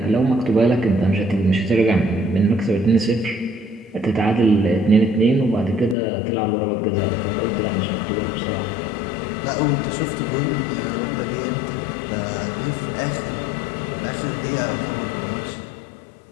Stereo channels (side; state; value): right; drops out; at 6.0 s